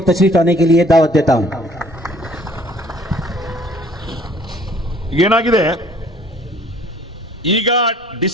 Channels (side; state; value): both; normal; correlation 0.56